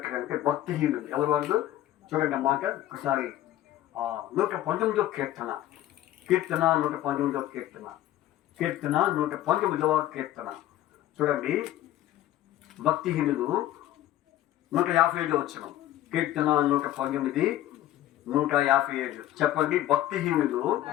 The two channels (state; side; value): quieter; right; 13.7 dB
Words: భక్తిహీనులు. ఎవరు వాళ్ళు? చూడండి అన్నమాట ఒకసారి 119 కీర్తన 119 కీర్తన 119 కీర్తన చూడండి. భక్తిహీనులు 155 వచ్చిన కీర్తన 119 157 చెప్పండి. భక్తిహీనులు